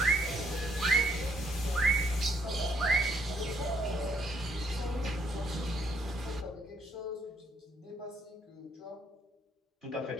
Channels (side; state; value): both; normal; correlation 0.69